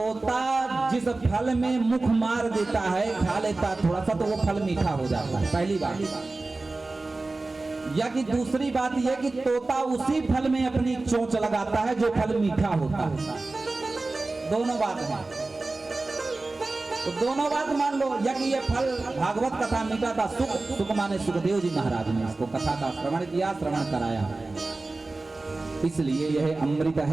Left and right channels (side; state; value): left; quieter; 3.3 dB